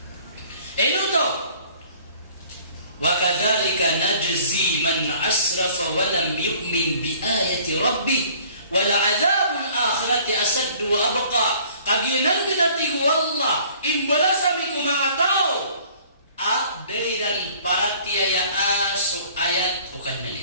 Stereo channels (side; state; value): both; inverted; correlation -0.53